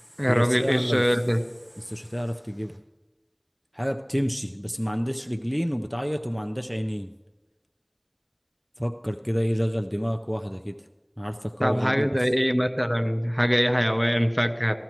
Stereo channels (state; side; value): identical; both; correlation 1.00